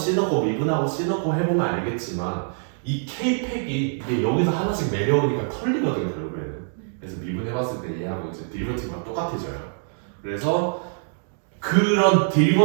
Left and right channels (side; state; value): left; silent; 62 dB below the other